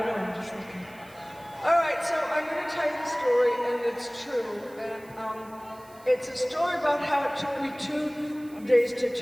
know, I'm just looking. All right, so I'm gonna tell you the story, and it's true. And it's a story about how it took me 2 days to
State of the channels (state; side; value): noise; right; hiss, 25 dB below the sound